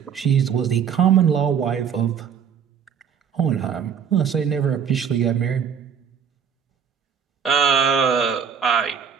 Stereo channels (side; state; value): left; quieter; 7.5 dB